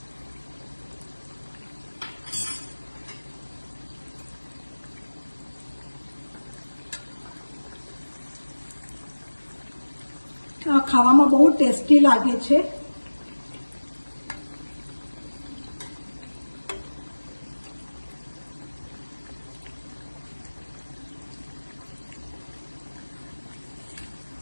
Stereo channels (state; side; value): inverted; both; correlation -1.00